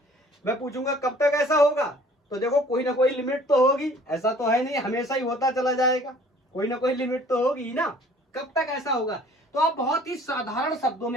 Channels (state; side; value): normal; both; correlation 0.53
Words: मैं पूछूंगा कब तक ऐसा होगा? तो देखो कोई ना कोई लिमिट तो होगी, ऐसा तो है नहीं हमेशा ही होता चला जाएगा, कोई ना कोई लिमिट तो होगी ना। कब तक ऐसा होगा? तो आप बहुत ही साधारण शब्दों